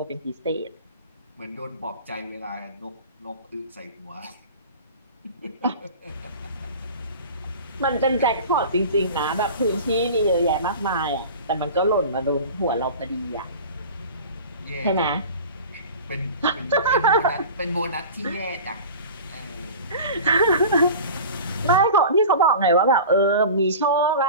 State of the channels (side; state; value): both; inverted; correlation -0.36